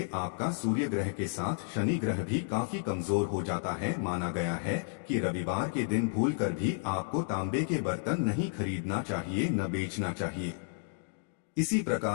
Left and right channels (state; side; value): silent; right; digital silence